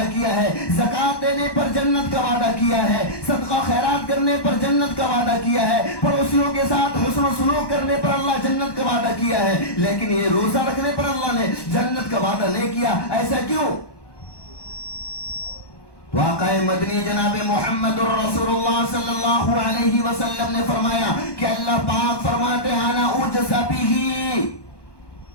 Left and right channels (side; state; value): right; late; 1.1 ms